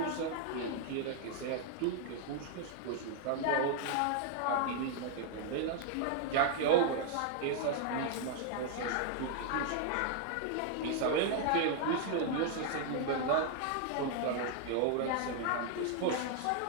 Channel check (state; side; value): different; both; correlation 0.00